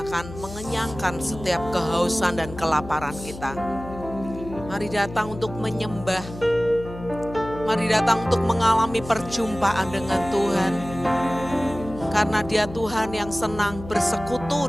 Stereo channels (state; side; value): noise; left; hum, 13 dB below the sound